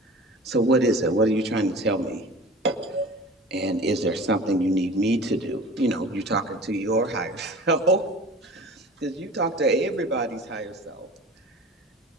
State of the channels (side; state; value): both; normal; correlation 0.40